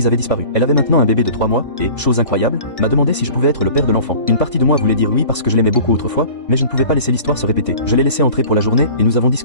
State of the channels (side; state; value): right; late; 1.5 ms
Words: avait disparu. Elle avait maintenant un bébé de 3 mois, et, chose incroyable, m'a demandé si je pouvais être le père de l'enfant. Une partie de moi voulait dire oui parce que je l'aimais beaucoup autrefois, mais je ne pouvais pas laisser l'histoire se répéter. Je l'ai laissé entrer pour la journée, et nous avons